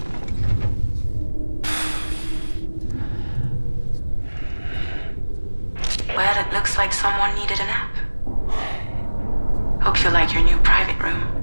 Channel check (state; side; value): inverted; both; correlation -1.00